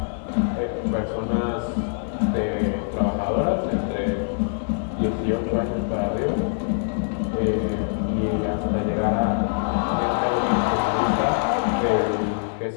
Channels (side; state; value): right; silent; digital silence